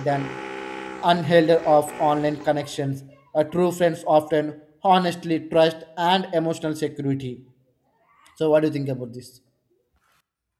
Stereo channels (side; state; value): both; identical; correlation 1.00